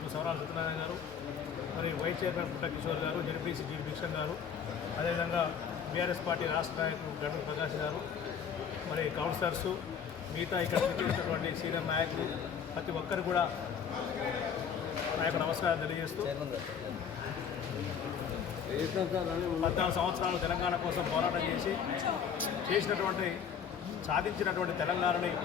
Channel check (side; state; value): right; quieter; 7.4 dB